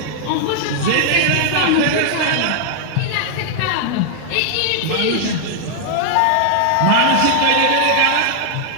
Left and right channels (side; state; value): both; different; correlation 0.00